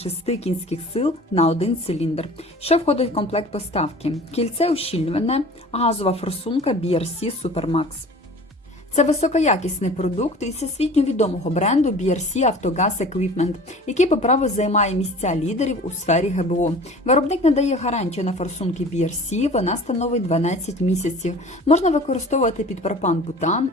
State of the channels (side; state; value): both; normal; correlation 0.43